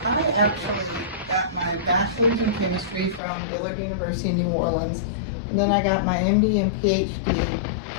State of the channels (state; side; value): drops out; right; at 3.2 s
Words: I actually got my bachelor's in chemistry from Dillard University in New Orleans, and then I got my MD and PhD